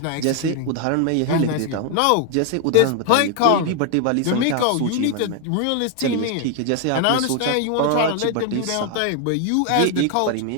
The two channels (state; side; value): different; both; correlation 0.00